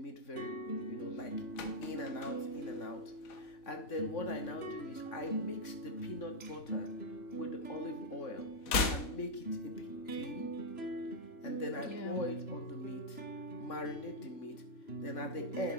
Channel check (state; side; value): late; right; 4.0 ms